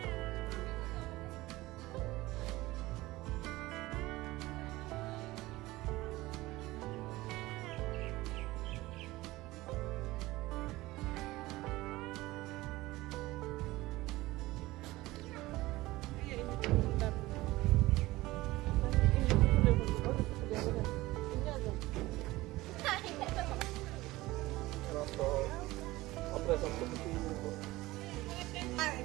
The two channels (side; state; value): left; quieter; 18.8 dB